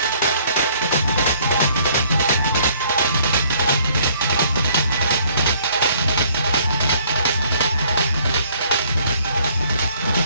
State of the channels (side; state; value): both; inverted; correlation -0.61